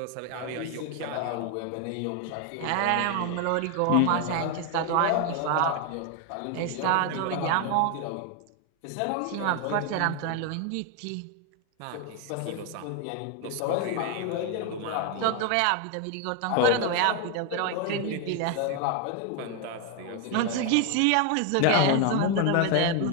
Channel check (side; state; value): both; different; correlation 0.01